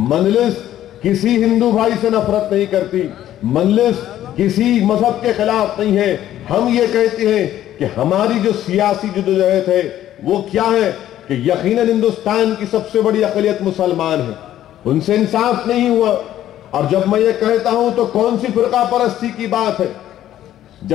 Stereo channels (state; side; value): quieter; right; 12.4 dB